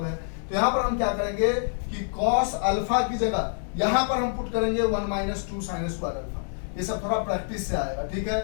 है। तो यहाँ पर हम क्या करेंगे कि cos अल्फा की जगह यहाँ पर हम पुट करेंगे 1 माइनस 2 साइन स्क्वायर अल्फा। ये सब थोड़ा प्रैक्टिस से आएगा, ठीक है,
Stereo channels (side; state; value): right; silent; 61 dB below the other